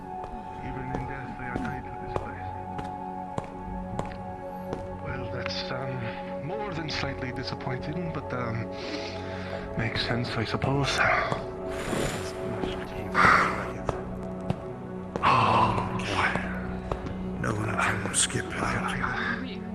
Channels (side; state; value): both; identical; correlation 1.00